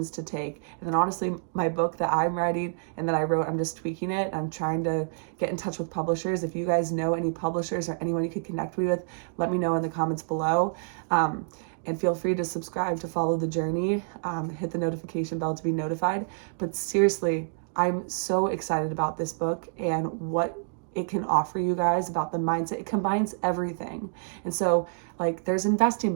to take. And then honestly, my book that I'm writing and that I wrote, I'm just tweaking it. I'm trying to get in touch with publishers. If you guys know any publishers or anyone you could connect me with, let me know in the comments below. And feel free to subscribe to follow the journey. Hit the notification bell to be notified. But seriously, I'm so excited about this book and what it can offer you guys about the mindset. It combines everything. And so, like, there's investing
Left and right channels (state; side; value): silent; left; digital silence